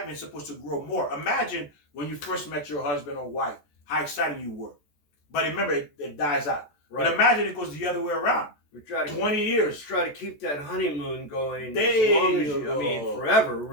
is supposed to grow more. Imagine when you first met your husband or wife, how excited you were. But remember, it dies out. Right. But imagine it goes the other way around. We try to 20 years. Try to keep that honeymoon going as long as you, I mean, forever,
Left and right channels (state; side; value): late; right; 14 ms